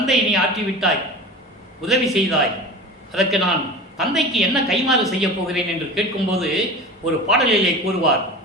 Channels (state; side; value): normal; both; correlation 0.33